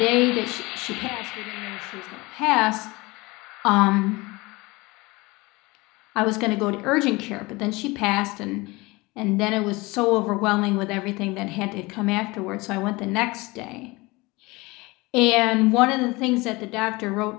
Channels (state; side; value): quieter; right; 23.2 dB